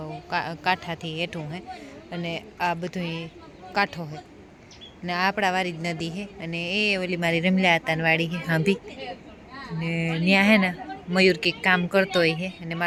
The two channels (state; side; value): identical; both; correlation 1.00